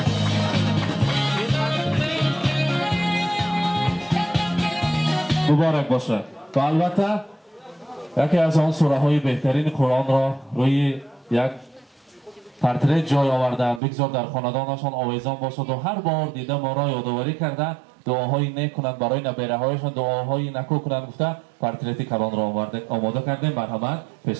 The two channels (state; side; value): drops out; left; at 13.8 s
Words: مبارک باشد. و البته یکی از آن سوره های بهترین قرآن را روی یک پرتره جای آوردن، بگذار در خاندانشان آویزان باشد و هر بار دیده ما را یادآوری کرده дуоҳои нек кунанд, барои набераҳояшон дуоҳои накӯ кунанд гуфта портрети калонро омода кардем. Марҳамат,